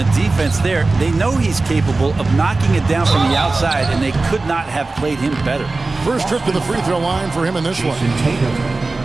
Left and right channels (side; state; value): left; quieter; 3.5 dB